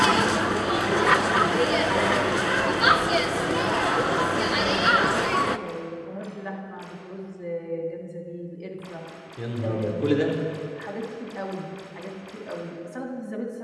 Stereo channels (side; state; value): both; identical; correlation 1.00